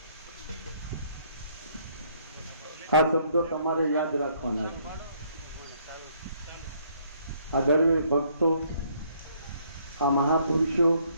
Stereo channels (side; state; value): both; inverted; correlation -0.66